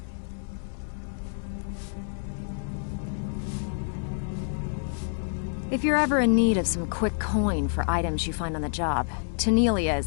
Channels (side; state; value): right; silent; 58 dB below the other